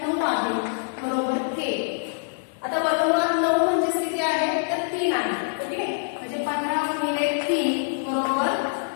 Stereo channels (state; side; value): silent; right; digital silence